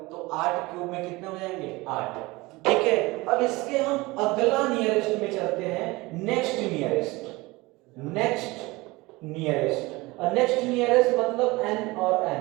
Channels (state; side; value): quieter; left; 22.1 dB